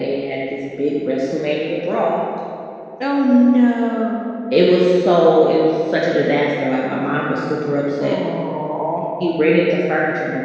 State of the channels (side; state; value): both; identical; correlation 1.00